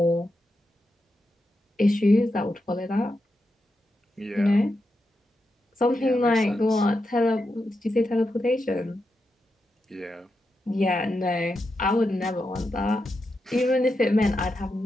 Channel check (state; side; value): normal; both; correlation 0.87